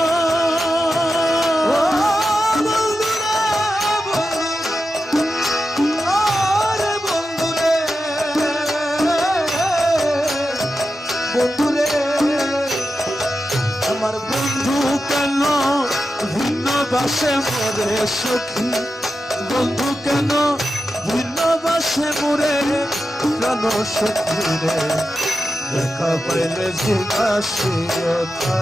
বাসে মোরে সখী বন্ধু কেন ভিন্নবাসে মোরে প্রাণ সখী রে দেখা পাইলে জিজ্ঞাসিও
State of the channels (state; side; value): normal; both; correlation 0.90